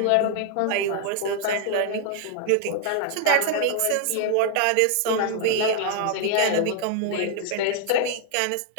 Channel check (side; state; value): both; different; correlation 0.00